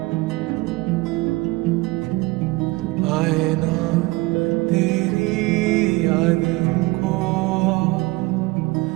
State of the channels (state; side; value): quieter; left; 22.3 dB